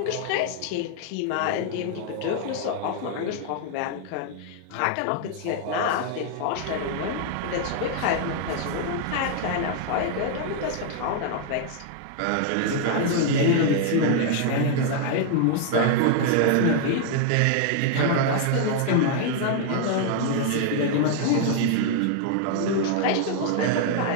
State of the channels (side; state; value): both; different; correlation 0.00